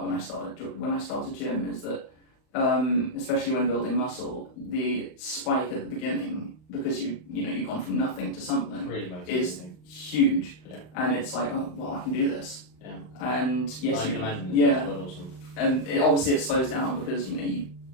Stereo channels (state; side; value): late; right; 39 ms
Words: when I started gym, is that especially when building muscle, the spike at the beginning, because you've gone from nothing to something, really is huge. Yeah. And it's like, oh well, I can do this. Yeah. And yes, I can imagine. Yeah. Quite awesome. And obviously it slows down because you